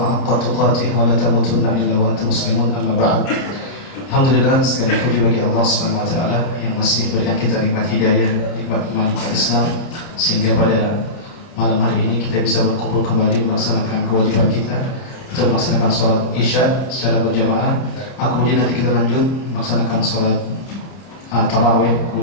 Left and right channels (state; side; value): late; right; 30 ms